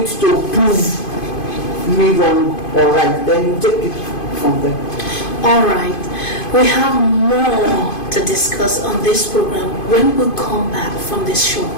to prove me wrong or right. Then you take it from there. All right. We have more to discuss on this program when we come back from this short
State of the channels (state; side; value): late; right; 2.5 ms